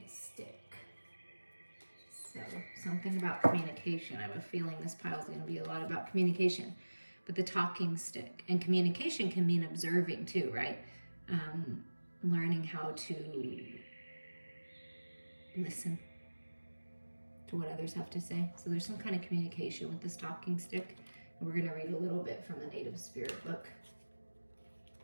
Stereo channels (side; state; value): both; inverted; correlation -1.00